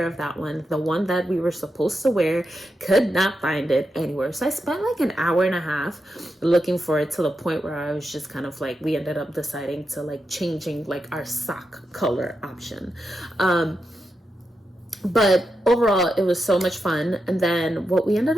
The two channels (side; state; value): both; normal; correlation 0.87